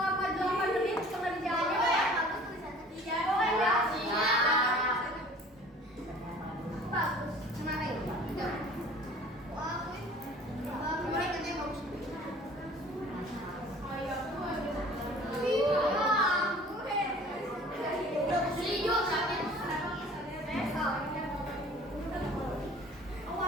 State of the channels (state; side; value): normal; both; correlation 0.48